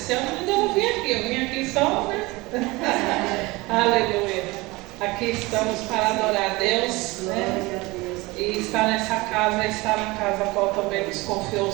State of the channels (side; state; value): left; quieter; 22.6 dB